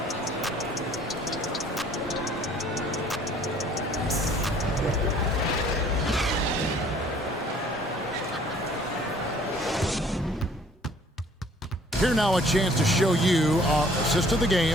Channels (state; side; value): normal; both; correlation 0.56